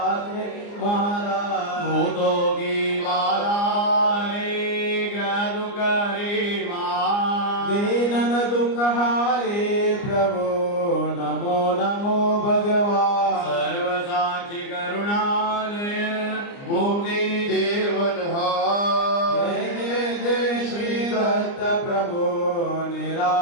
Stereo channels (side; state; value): right; late; 29 ms